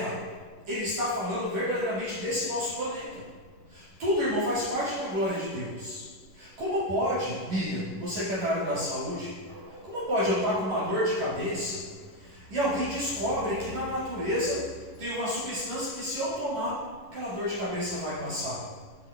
ele está falando verdadeiramente desse nosso planeta. Tudo, irmão, faz parte da glória de Deus. Como pode, Bia, você que é da área da saúde, como pode eu estar com uma dor de cabeça e alguém descobre que na natureza tem uma substância que, se eu tomar, aquela dor de cabeça vai passar?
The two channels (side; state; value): left; late; 11 ms